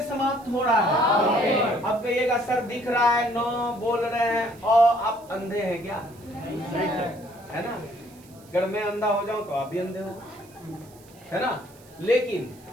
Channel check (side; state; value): right; noise; hiss, 26 dB below the sound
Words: समाप्त हो रहा है? अब कहिएगा सर दिख रहा है, नो बोल रहे हैं, और आप अंधे हैं क्या? है ना? अगर मैं अंधा हो जाऊं तो आप भी अंधे हो, है ना? लेकिन